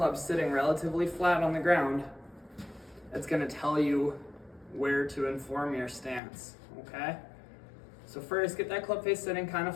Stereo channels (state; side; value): drops out; right; at 6.2 s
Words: sitting relatively flat on the ground, it's gonna tell you where to inform your stance, okay? So first, get that club face sitting kind